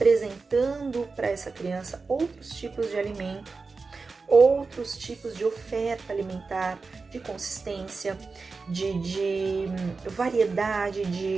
para essa criança outros tipos de alimento, outros tipos de oferta alimentar, de consistência, de variedade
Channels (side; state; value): left; quieter; 4.3 dB